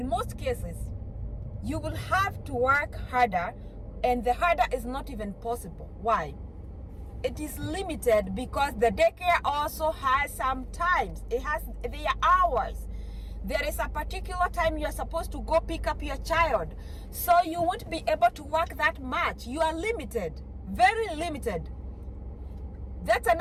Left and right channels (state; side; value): identical; both; correlation 1.00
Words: most cases, you will have to work harder, and the harder is not even possible. Why? It is limited because the daycare also has some times. It has their hours. There is a particular time you are supposed to go pick up your child. So you won't be able to work that much. You are limited, very limited. That's